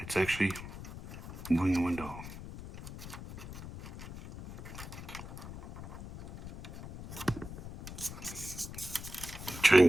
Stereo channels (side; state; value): left; noise; rumble, 11 dB below the sound